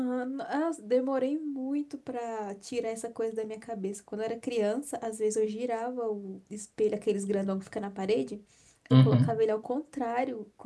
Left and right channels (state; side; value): identical; both; correlation 1.00